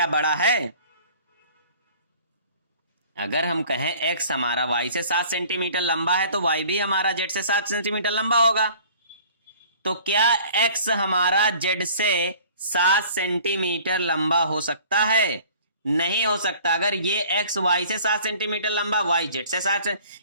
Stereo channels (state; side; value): inverted; both; correlation -0.50